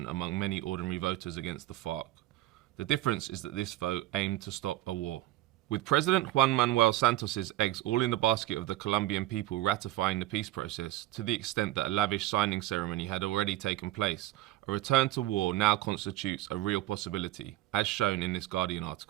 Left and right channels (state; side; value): quieter; left; 16.0 dB